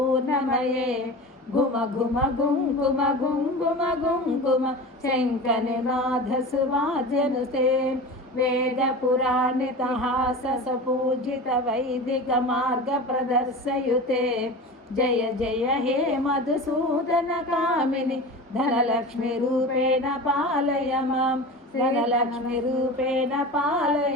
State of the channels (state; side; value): normal; both; correlation 0.31